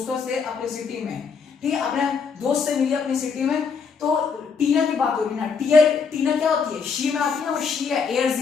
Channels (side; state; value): right; quieter; 5.7 dB